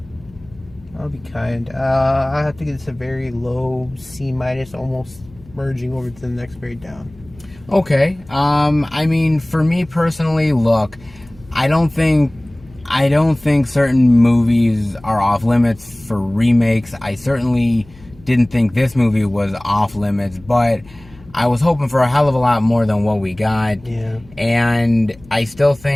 I'll be kind. I have to give this a very low C-, almost merging over to the next grade down. Okay. I mean, for me personally, look, I don't think certain movies are off limits for remakes. I certainly didn't think this movie was off limits, but I was hoping for a hell of a lot more than what we got. Yeah. And I still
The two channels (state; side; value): noise; left; hum, 24 dB below the sound